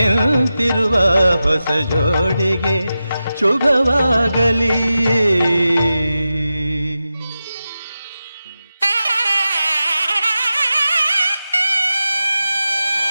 ಹೊಸ ಜೋಡಿಗೆ ಶುಭವಾಗಲಿ.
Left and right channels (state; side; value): inverted; both; correlation -0.92